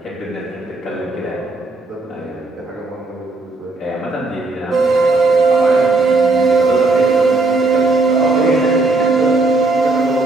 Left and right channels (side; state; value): left; quieter; 3.3 dB